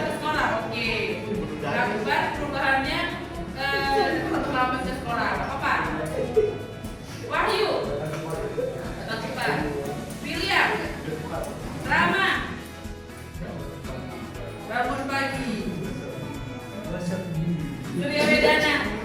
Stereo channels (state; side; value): identical; both; correlation 1.00